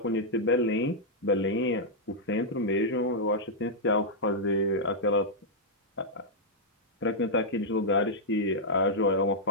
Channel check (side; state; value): both; normal; correlation -0.07